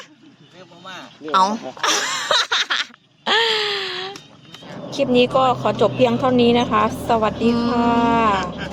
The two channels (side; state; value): both; identical; correlation 1.00